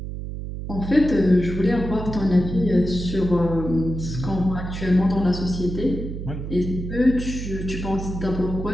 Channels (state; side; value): noise; right; hum, 7 dB below the sound